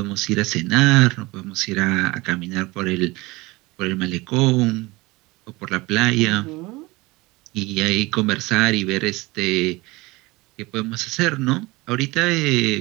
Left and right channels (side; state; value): left; quieter; 22.2 dB